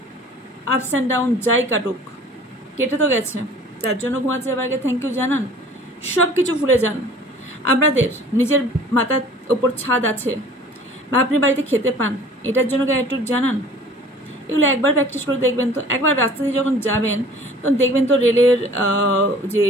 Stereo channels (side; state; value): both; normal; correlation 0.48